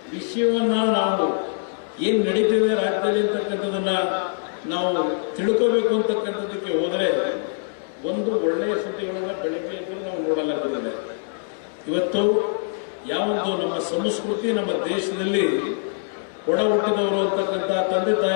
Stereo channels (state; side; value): silent; right; digital silence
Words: ವಿಷಯವನ್ನ ನಾವು ಏನ್ ನಡೀತಿದೆ ರಾಜ್ಯದಲ್ಲಿ ಅಂತಕ್ಕಂಥದನ್ನ ನಾವು ತಿಳ್ಕೋಬೇಕು ಅಂತಕ್ಕಂಥದ್ದಕ್ಕೆ ಹೋದರೆ ಒಂದು ಒಳ್ಳೆಯ ಸುದ್ದಿಗಳನ್ನ ಬೆಳಗ್ಗೆ ಎದ್ದು ನಾವು ನೋಡಲಾಗುತ್ತದೆ. ಇವತ್ತು ಯಾವೊಂದು ನಮ್ಮ ಸಂಸ್ಕೃತಿ, ನಮ್ಮ ದೇಶದಲ್ಲಿ ಒಡ ಹುಟ್ಟಿದವರು ಅಂತಕ್ಕಂಥ ತಂದೆ